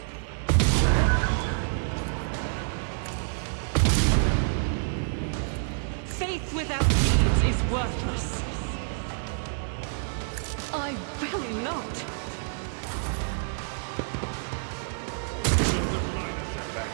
Faith without deeds is worthless. I will not. Just a minor setback.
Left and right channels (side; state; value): left; silent; 59 dB below the other